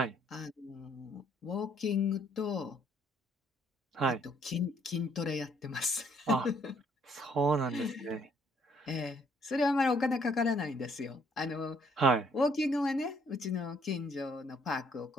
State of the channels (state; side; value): normal; both; correlation 0.66